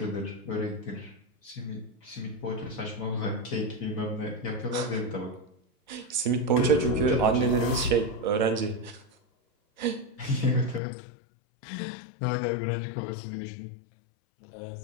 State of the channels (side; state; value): right; drops out; at 10.8 s